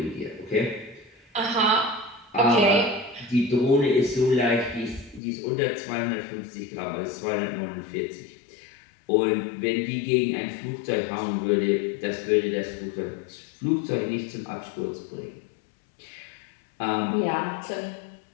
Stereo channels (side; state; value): right; drops out; at 5.2 s